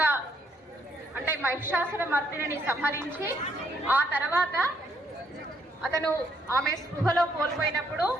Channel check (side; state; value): both; normal; correlation 0.71